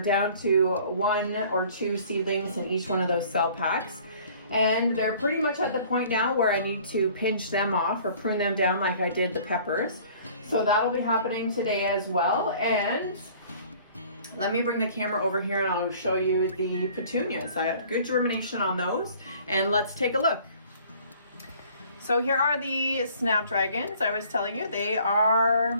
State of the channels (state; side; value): inverted; both; correlation -0.52